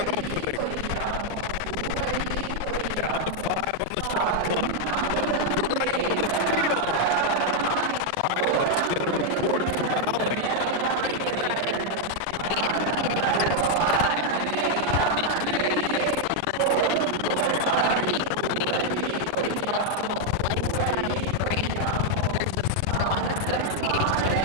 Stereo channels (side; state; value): both; different; correlation 0.00